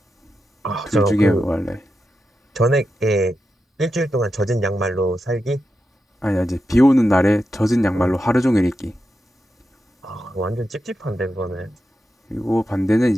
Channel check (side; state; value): both; normal; correlation 0.88